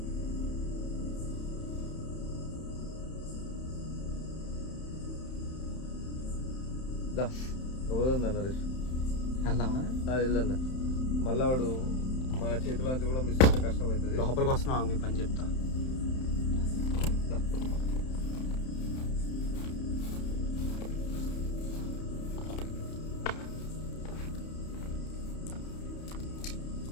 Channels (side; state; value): right; late; 31 ms